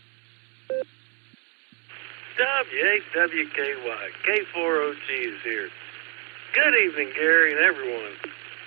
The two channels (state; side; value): quieter; left; 31.6 dB